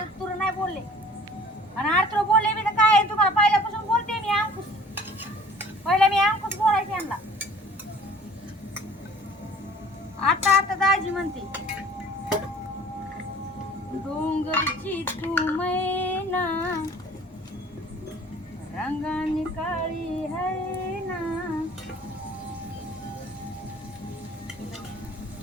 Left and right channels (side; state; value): both; normal; correlation 0.50